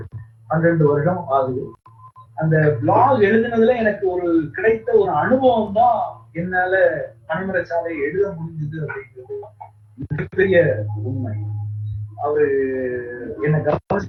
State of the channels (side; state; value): both; identical; correlation 1.00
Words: 12 வருடம் ஆகுது. அந்த பிளாக் எழுதுனதுல எனக்கு ஒரு கிடைத்த ஒரு அனுபவம் தான் என்னால பனைமரச்சாலை எழுத முடிஞ்சது அப்படிங்கிறது மிகப்பெரிய உண்மை. அவரு என்ன